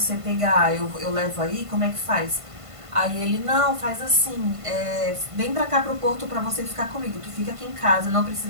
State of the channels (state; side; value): late; left; 1.5 ms